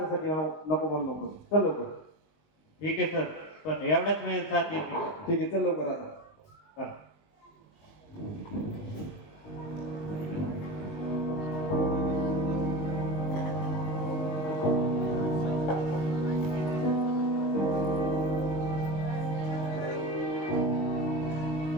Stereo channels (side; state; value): right; late; 20 ms